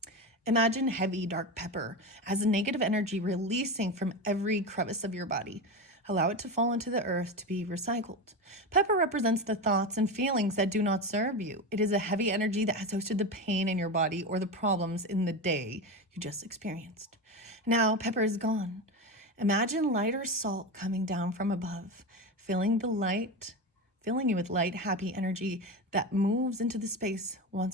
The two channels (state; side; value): normal; both; correlation 0.20